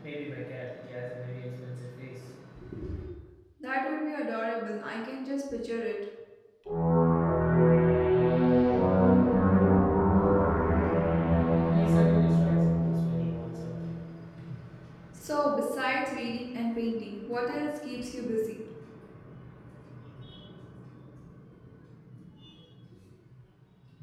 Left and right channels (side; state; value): both; identical; correlation 1.00